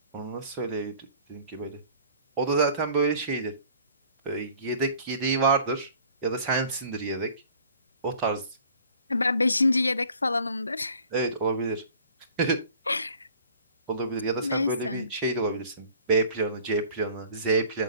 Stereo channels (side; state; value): both; inverted; correlation -0.51